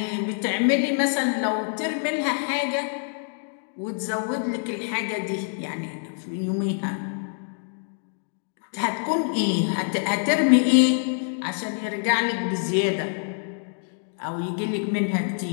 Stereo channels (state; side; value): silent; right; digital silence